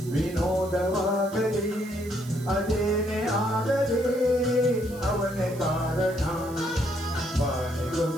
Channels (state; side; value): noise; right; hiss, 19 dB below the sound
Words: ವಿನೋದವಾಗಲಿ ಅದೇನೇ ಆಗಲಿ ಅವನೇ ಕಾರಣ